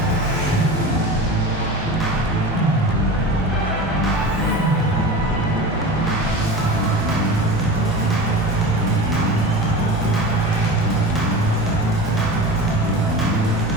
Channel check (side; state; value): both; normal; correlation 0.31